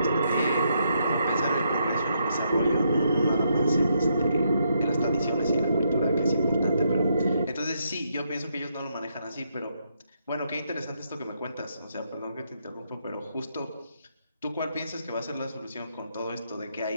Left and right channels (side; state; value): both; inverted; correlation -0.77